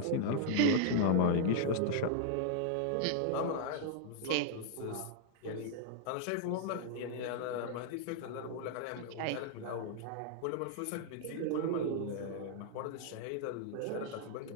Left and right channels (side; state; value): both; different; correlation -0.01